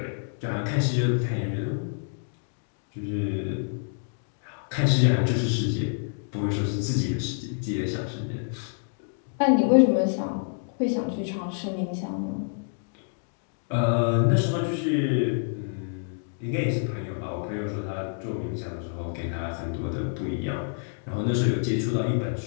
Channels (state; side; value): silent; right; digital silence